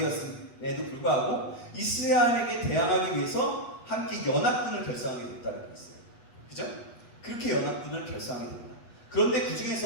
불구하고 이스라엘에게 대항하기 위해서 함께 연합군을 결성하게 됐다는 게 있어요. 그죠? 그렇게 연합군을 결성하게 됩니다. 그런데 그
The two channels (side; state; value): right; late; 8.2 ms